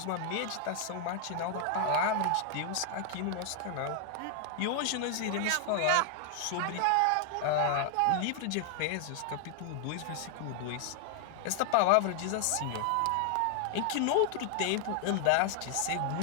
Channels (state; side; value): different; both; correlation 0.00